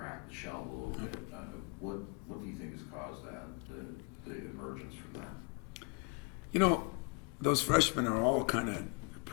the shell a little bit. What do you think has caused that, the emergence from that? Those freshmen are all kind of,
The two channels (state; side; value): quieter; right; 31.9 dB